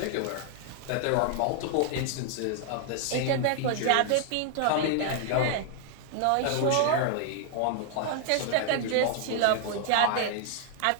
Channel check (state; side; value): different; both; correlation 0.00